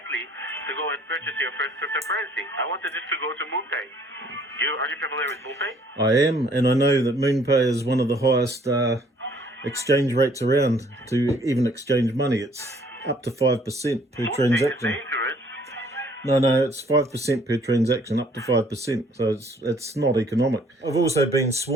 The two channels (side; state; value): both; normal; correlation 0.60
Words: to go and purchase your first cryptocurrency. I wanted just to go to Moonpay. Are you familiar with Moonpay? I am, and I know that Moonpay is one of the highest exchange rates around to even exchange money. It's up to 5% per Moonpay transaction. is dangerous. No, it's 5% per transaction, up to 5%. So it's not economic. I've also been